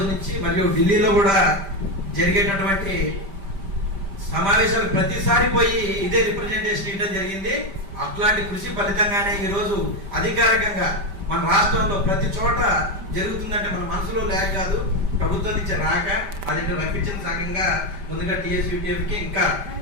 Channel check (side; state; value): left; late; 5.1 ms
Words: నుంచి మరియు ఢిల్లీలో కూడా జరిగేటటువంటి సమావేశాలు ప్రతిసారి పోయి ఇదే రిప్రజెంటేషన్ ఇవ్వడం జరిగింది. అట్లాంటి కృషి ఫలితంగానే ఈరోజు అధికారికంగా మన రాష్ట్రంలో ప్రతి చోట జరుగుతుందంటే మన మనసులో లేక కాదు, ప్రభుత్వం నుంచి రాక అది రప్పించిన సంఘంగా ముందుగా టీఎస్యూటీఎఫ్కి ఇంకా